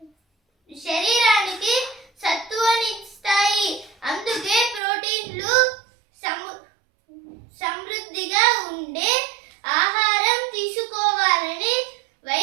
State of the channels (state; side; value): drops out; left; at 4.8 s